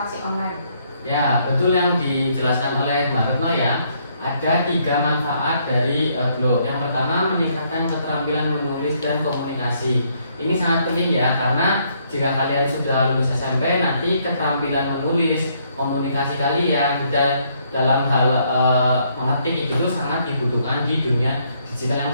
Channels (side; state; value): both; inverted; correlation -0.70